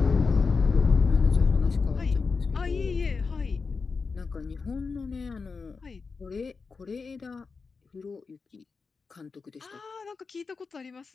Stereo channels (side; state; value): right; quieter; 4.7 dB